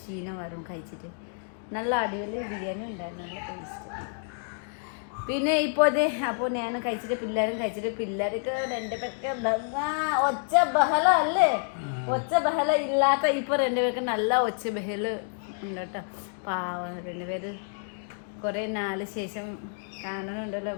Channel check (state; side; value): silent; right; 59 dB below the other